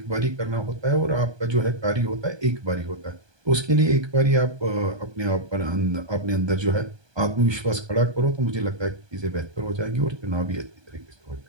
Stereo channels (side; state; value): left; late; 1.2 ms